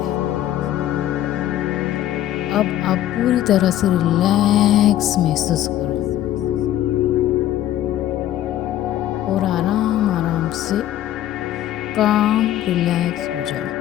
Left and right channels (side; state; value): right; quieter; 12.7 dB